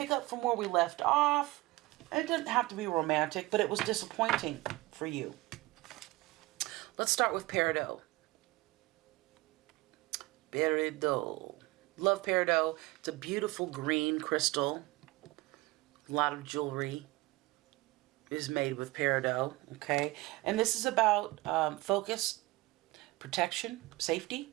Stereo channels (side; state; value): left; quieter; 20.6 dB